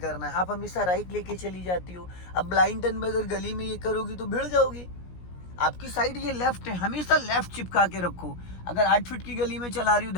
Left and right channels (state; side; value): late; right; 17 ms